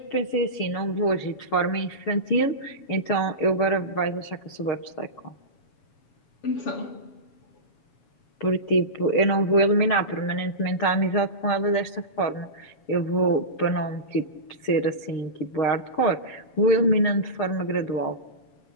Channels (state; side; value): late; right; 7.2 ms